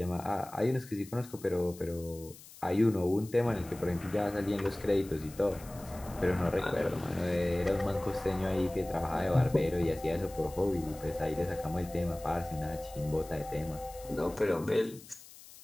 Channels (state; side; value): noise; left; hiss, 19 dB below the sound